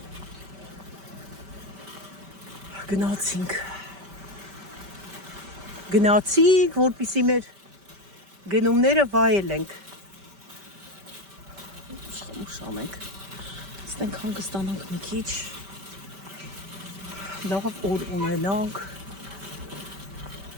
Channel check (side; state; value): left; late; 5.1 ms